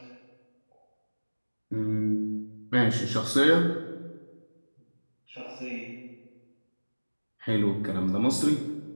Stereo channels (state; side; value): inverted; both; correlation -1.00